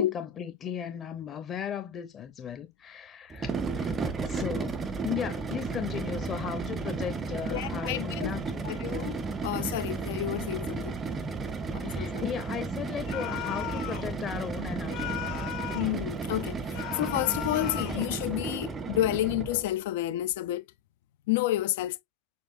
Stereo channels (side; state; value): right; quieter; 3.8 dB